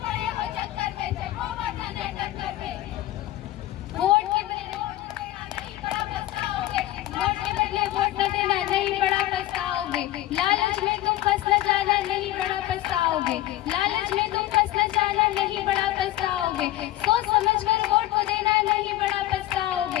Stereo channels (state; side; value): quieter; right; 15.1 dB